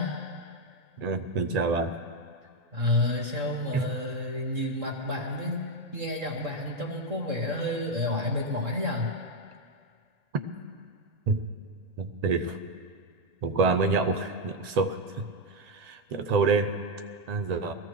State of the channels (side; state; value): left; late; 1.8 ms